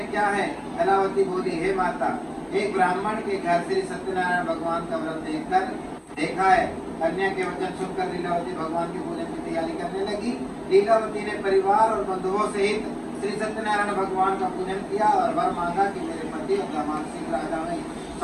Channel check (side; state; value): both; identical; correlation 1.00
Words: क्या है? कलावती बोली, हे माता, एक ब्राह्मण के घर श्री सत्यनारायण भगवान का व्रत देखा है। कन्या के वचन सुनकर लीलावती भगवान के पूजन की तैयारी करने लगी। लीलावती ने परिवार और बंधुओं सहित श्री सत्यनारायण भगवान का पूजन किया और वर मांगा कि मेरे पति और दामाद शीघ्र आ जाएं।